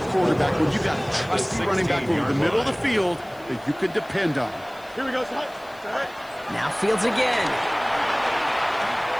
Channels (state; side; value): noise; left; hiss, 27 dB below the sound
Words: quarterback when you got a trusty running back over the middle of the field that you can depend on. Here we go, son. Now Fields again.